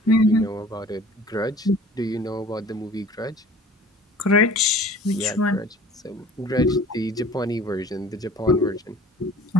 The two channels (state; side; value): normal; both; correlation 0.47